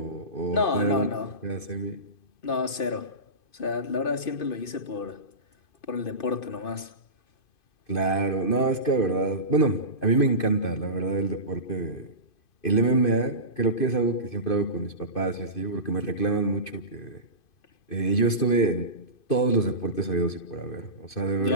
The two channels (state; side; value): late; right; 2.5 ms